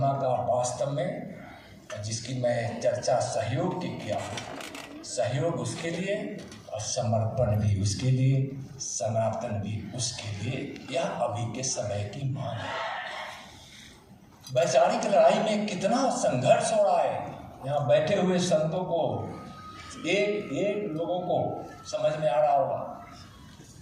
का वास्तव में जिसकी मैं चर्चा सहयोग की किया, सहयोग उसके लिए और समर्पण भी उसके लिए, सनातन भी उसके लिए, यह अभी के समय की मांग है। वैचारिक लड़ाई में कितना संघर्ष हो रहा है। यहाँ बैठे हुए संतों को, एक एक लोगों को समझ में आ रहा होगा,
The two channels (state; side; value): identical; both; correlation 1.00